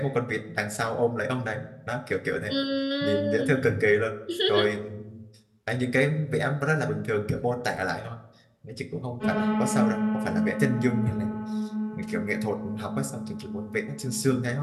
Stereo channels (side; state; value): both; identical; correlation 1.00